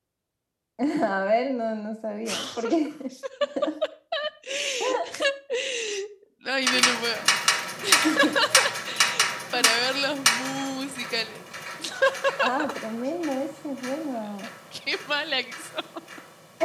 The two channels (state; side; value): identical; both; correlation 1.00